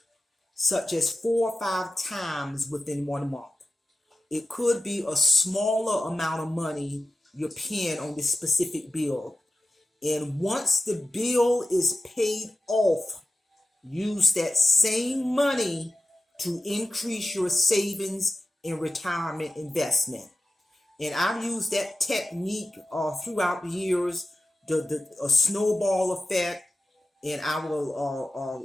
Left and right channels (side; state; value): both; normal; correlation 0.93